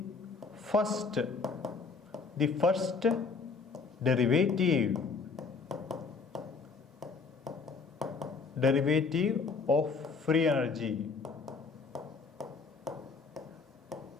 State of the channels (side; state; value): right; quieter; 4.7 dB